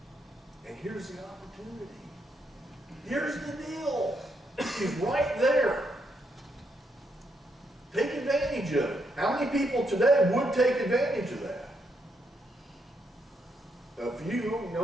and here's the opportunity. Here's the deal. He's right there. Take advantage of it. How many people today would take advantage of that? A few,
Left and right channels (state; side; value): normal; both; correlation 0.77